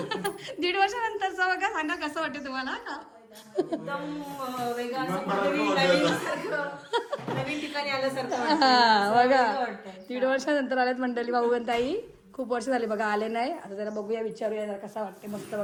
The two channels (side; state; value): both; identical; correlation 1.00